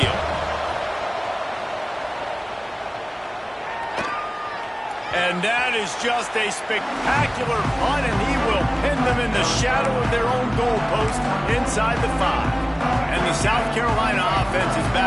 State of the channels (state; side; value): identical; both; correlation 1.00